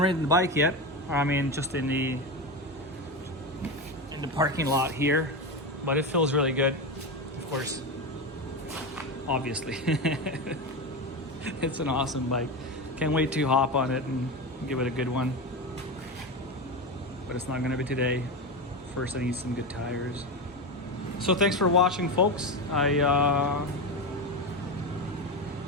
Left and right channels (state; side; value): normal; both; correlation 0.18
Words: the bike yet. I mean, just in the parking lot here, but it feels really good. Of course, obviously, it's an awesome bike. Can't wait to hop on it and give it a good one. But it's not gonna be today. First, I need some good tires. So thanks for watching, folks. I